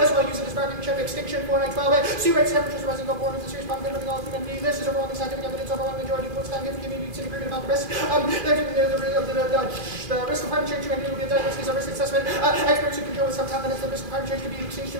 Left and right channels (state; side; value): late; left; 2.5 ms